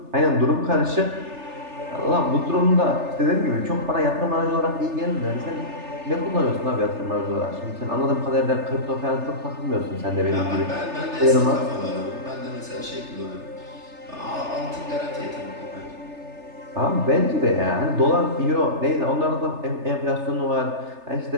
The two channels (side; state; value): left; late; 3.3 ms